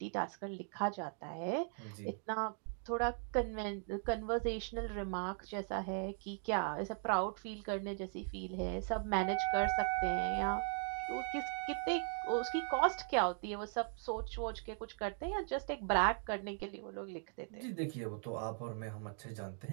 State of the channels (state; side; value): silent; left; 52 dB below the other